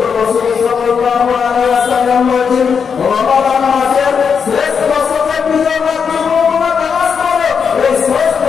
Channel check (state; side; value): quieter; right; 6.4 dB